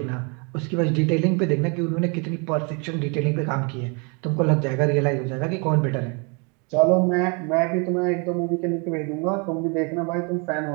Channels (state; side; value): quieter; left; 33.5 dB